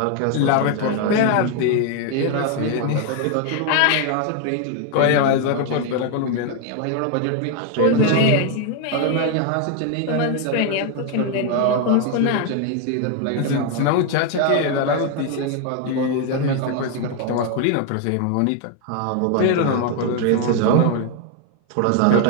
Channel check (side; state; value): both; different; correlation 0.01